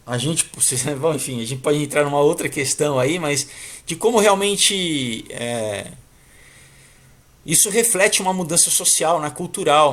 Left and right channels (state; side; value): identical; both; correlation 1.00